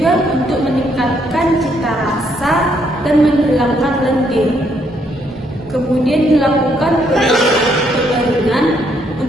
untuk meningkatkan cita rasa dan menghilangkan lendir. Kemudian dilakukan pengeringan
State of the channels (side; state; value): both; normal; correlation 0.72